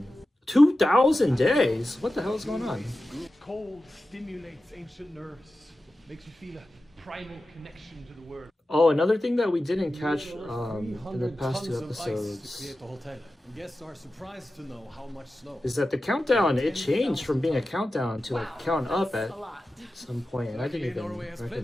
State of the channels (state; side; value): normal; both; correlation 0.94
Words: 2,000 days? What the hell is going on? Cold stimulates ancient nerves, makes you feel a primal connection to the world. Oh, another thing that we didn't catch in the past 2 episodes guests are surprised to know how much snow is that the countdown, it changed from being a countdown to like count up at some point, and I didn't even